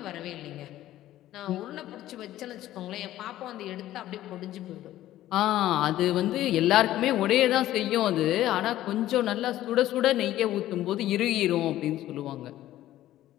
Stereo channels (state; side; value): quieter; right; 14.0 dB